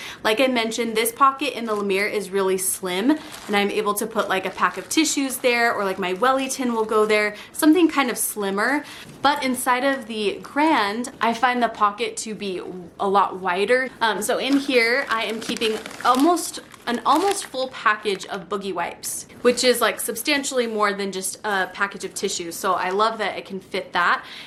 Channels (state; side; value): identical; both; correlation 1.00